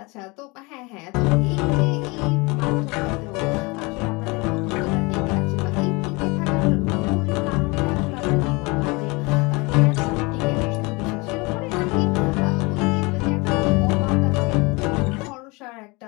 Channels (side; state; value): right; quieter; 26.3 dB